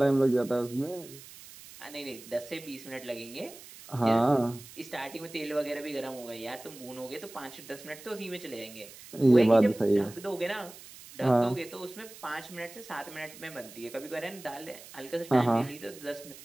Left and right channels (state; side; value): noise; right; hiss, 17 dB below the sound